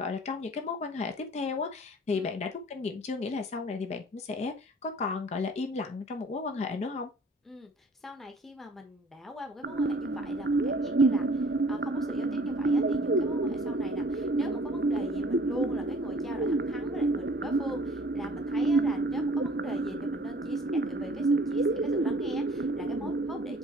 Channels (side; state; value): both; normal; correlation 0.52